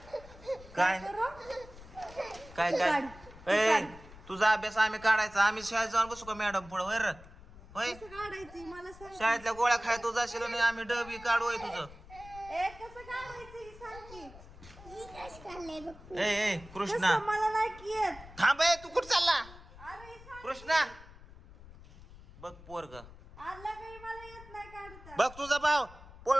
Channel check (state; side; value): noise; left; rumble, 19 dB below the sound